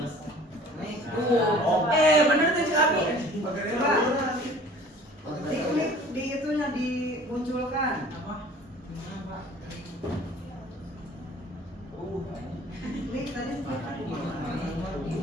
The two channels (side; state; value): both; normal; correlation 0.49